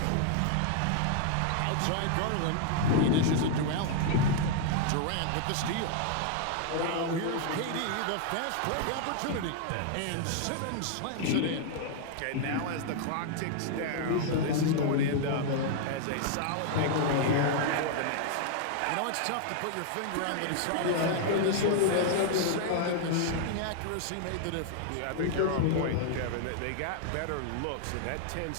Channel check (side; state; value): both; different; correlation 0.00